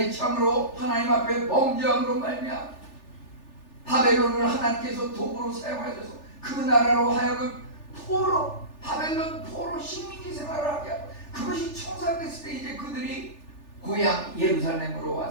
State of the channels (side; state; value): right; late; 3.4 ms